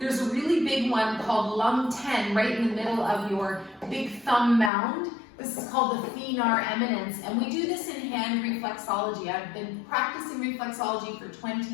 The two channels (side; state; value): right; drops out; at 4.7 s